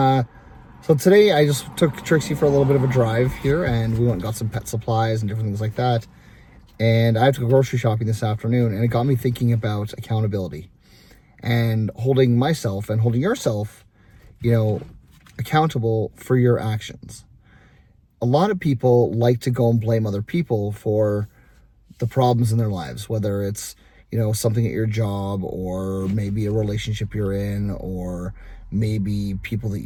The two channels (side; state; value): both; identical; correlation 1.00